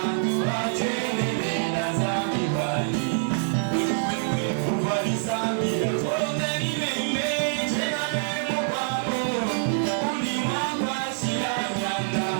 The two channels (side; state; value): left; silent; digital silence